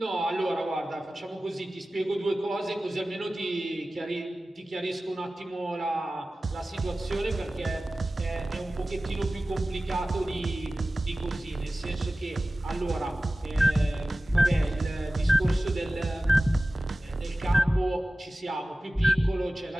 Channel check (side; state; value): both; normal; correlation 0.96